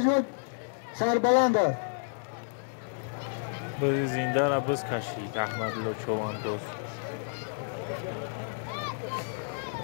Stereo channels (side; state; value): right; silent; digital silence